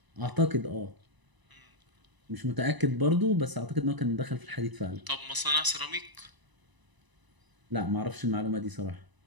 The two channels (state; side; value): late; left; 1.0 ms